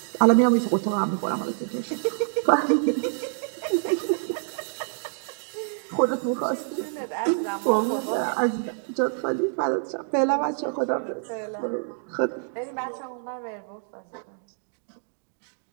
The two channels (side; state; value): left; silent; digital silence